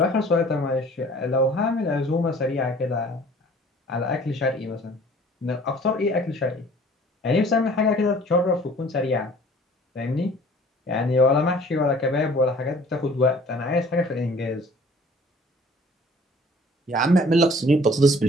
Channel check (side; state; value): both; normal; correlation 0.51